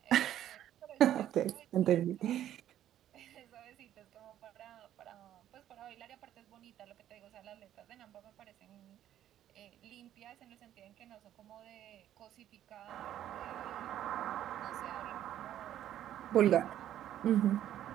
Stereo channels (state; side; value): quieter; left; 11.6 dB